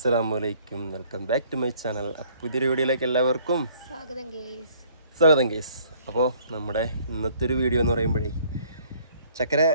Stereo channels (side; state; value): both; inverted; correlation -0.60